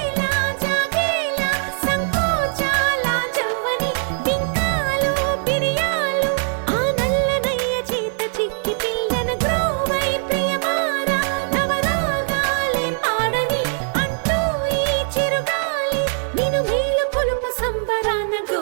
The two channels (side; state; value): left; silent; 61 dB below the other